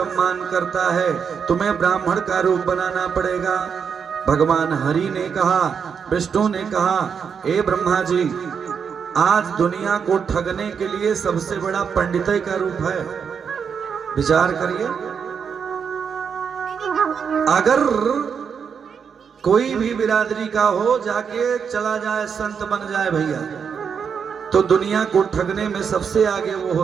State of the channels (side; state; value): left; quieter; 6.7 dB